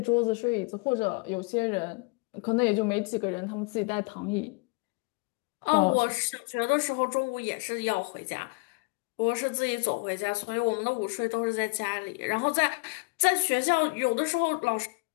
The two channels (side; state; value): right; quieter; 30.4 dB